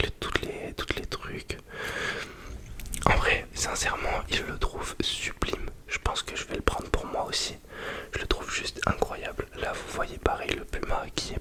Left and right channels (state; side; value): identical; both; correlation 1.00